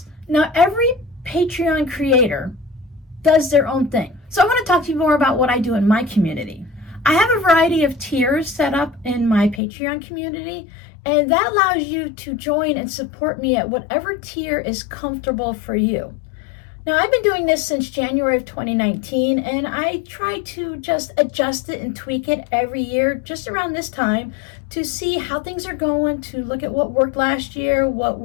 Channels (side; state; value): right; drops out; at 9.6 s